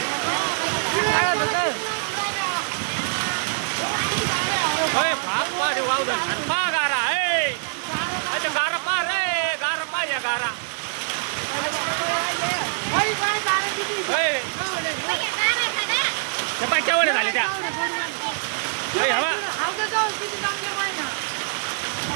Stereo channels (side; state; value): left; silent; digital silence